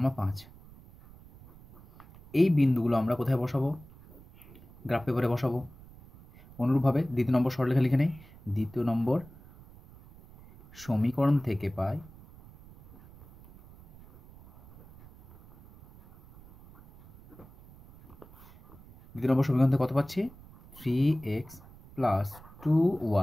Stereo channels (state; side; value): noise; right; rumble, 22 dB below the sound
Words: 5। এই বিন্দুগুলো আমরা কোথায় বসাবো? গ্রাফ পেপারে বসাবো। অনুরূপভাবে দ্বিতীয় নম্বর সরলরেখা লিখে নেই। দ্বিতীয় নম্বর সমীকরণ থেকে পাই দ্বিতীয় নম্বর সমীকরণ থেকে কত পাচ্ছি? 3x +